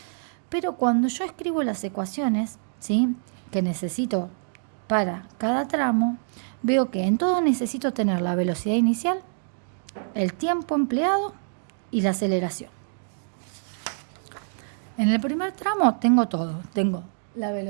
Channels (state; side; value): silent; left; digital silence